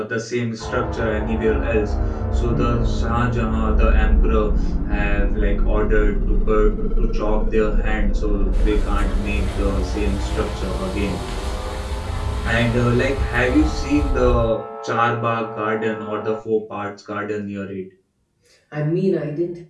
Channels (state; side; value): identical; both; correlation 1.00